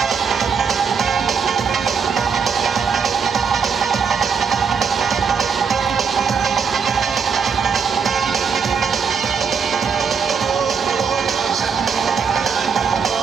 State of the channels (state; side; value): quieter; left; 6.1 dB